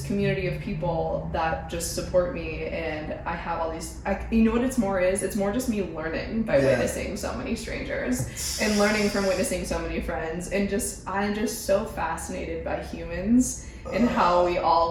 community of people that just support me, and I have all these, you know what it's more just me learning by witnessing so many strangers and learning from witnessing so many friends, and I'm just so fascinated by humans and how we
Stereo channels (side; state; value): both; identical; correlation 1.00